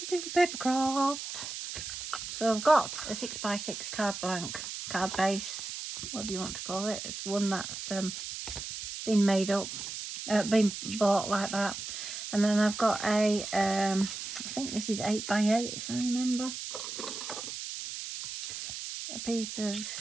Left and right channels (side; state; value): right; noise; hiss, 7 dB below the sound